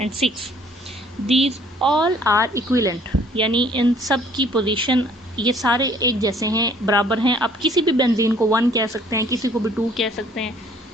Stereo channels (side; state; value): both; normal; correlation 0.59